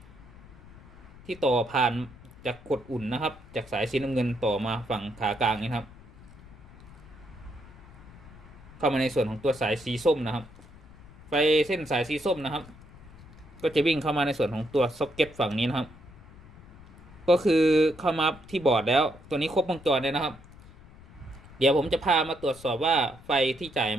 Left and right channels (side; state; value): left; noise; rumble, 20 dB below the sound